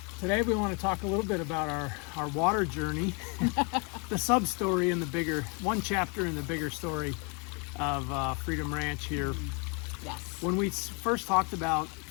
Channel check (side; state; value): right; quieter; 34.1 dB